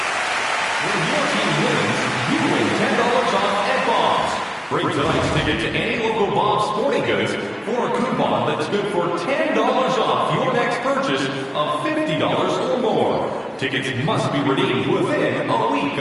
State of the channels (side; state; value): both; identical; correlation 1.00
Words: Bring tonight's ticket to any local Bob's Sporting Goods for a coupon that's good for $10 off your next purchase of $50 or more. Tickets must be redeemed within a week